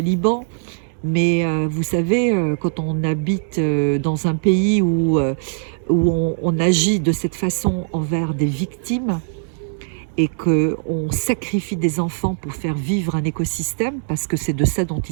mais vous savez, quand on habite dans un pays où on agit de cette façon envers des victimes et qu'on sacrifie des enfants pour faire vivre un écosystème, parce que c'est de ça dont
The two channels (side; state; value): left; silent; digital silence